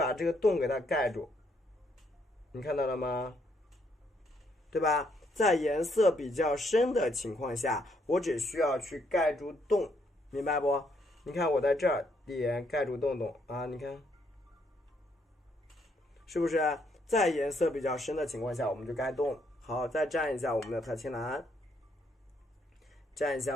这个洞给它盖住，你看到了吗？对吧？在颜色比较深的情况下，我只需要去盖住洞，明白不？你看我在这儿点盖住洞洞啊，你看，是不是？在颜色比较深的情况下，我们就盖洞。好，再蘸一下我们的太青蓝，蘸一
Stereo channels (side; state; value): both; normal; correlation 0.72